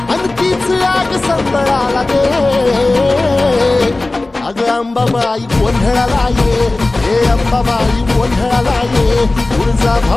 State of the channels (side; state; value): right; quieter; 3.0 dB